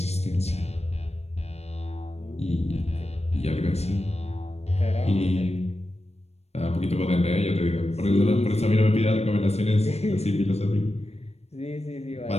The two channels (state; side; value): late; right; 0.31 ms